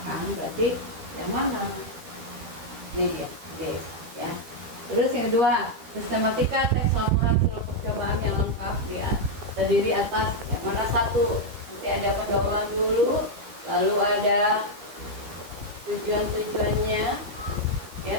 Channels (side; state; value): left; late; 13 ms